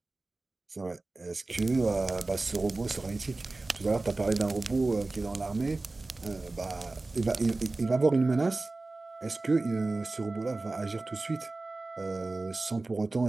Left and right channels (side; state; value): left; quieter; 3.3 dB